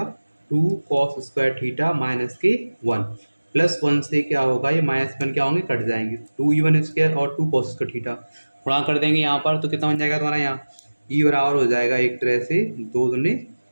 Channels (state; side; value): inverted; both; correlation -1.00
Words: 2 cos स्क्वायर थीटा माइनस के 1 प्लस 1 से क्या होगा, ये माइनस 1 क्या होंगे, कट जाएंगे, 2E1 स्क्वायर और 2 cos स्क्वायर थीटा गुणा कर देंगे यहाँ पर, तो कितना बन जाएगा तुम्हारा यहाँ ई बराबर हो जाएगा एक तरह से 2 दूनी